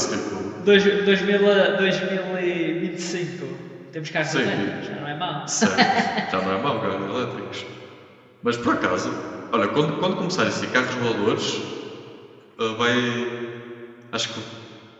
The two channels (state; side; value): identical; both; correlation 1.00